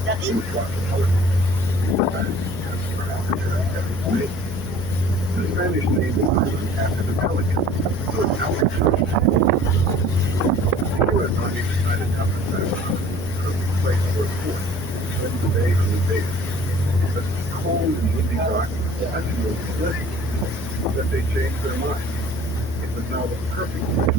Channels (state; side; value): noise; left; hum, 10 dB below the sound